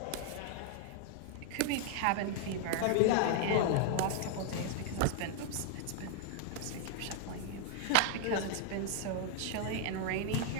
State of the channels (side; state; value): both; different; correlation 0.00